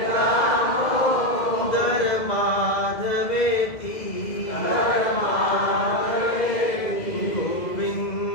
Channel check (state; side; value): late; right; 2.0 ms